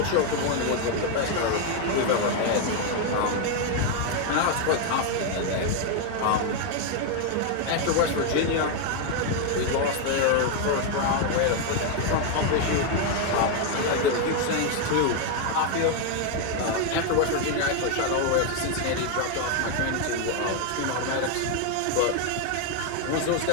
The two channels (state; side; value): different; both; correlation 0.01